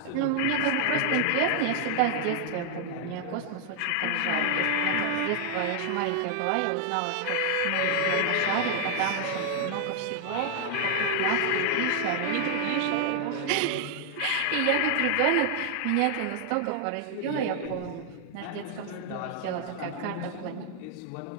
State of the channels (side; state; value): both; different; correlation 0.00